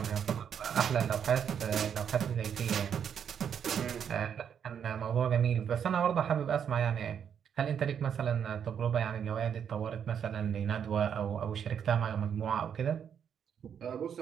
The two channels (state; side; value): quieter; left; 8.1 dB